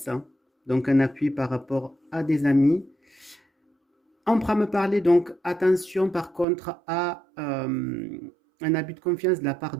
Donc un appui par rapport à des amis. On pourra me parler donc attention par contre à un abus de confiance de la part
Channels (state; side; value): drops out; left; at 6.5 s